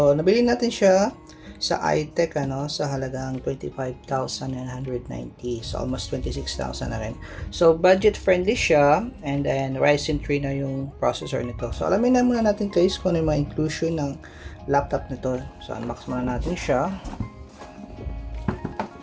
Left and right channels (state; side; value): identical; both; correlation 1.00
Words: nabili natin siya sa iTech sa halagang 25,990, so almost 26,000 na rin. So budget friendly siya, and then Ryzen 3 na yung processor nito. So alamin na muna natin guys kung ano yung mga inclusion ng laptop nito. So unbox muna natin siya.